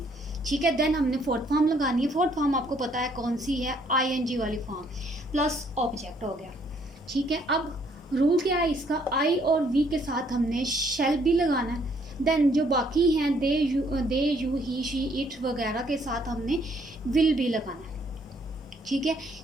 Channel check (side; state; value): both; normal; correlation 0.66